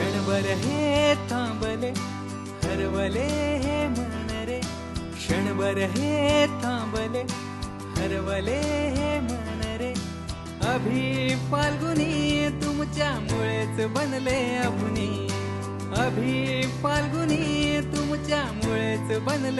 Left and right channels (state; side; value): identical; both; correlation 1.00